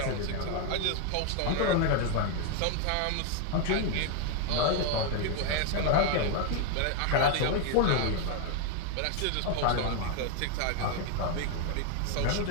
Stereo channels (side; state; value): both; different; correlation 0.01